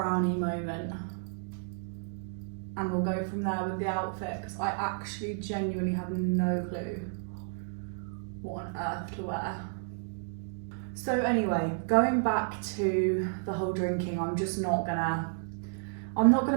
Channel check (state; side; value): silent; left; digital silence